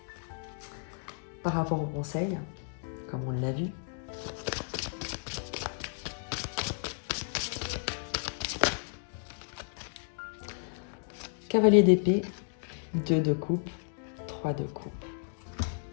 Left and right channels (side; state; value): right; silent; digital silence